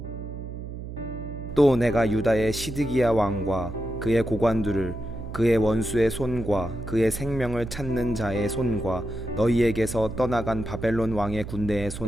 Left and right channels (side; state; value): right; noise; hum, 9 dB below the sound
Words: 또 내가 유다의 시드기야 왕과 그의 고관들을 그의 원수의 손과 그의 생명을 찾는 자의 손과 너희에게서 떠나간 바벨론 왕의 군대의